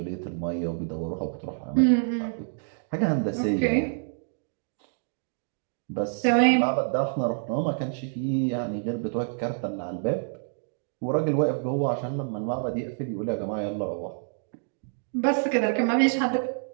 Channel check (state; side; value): silent; left; digital silence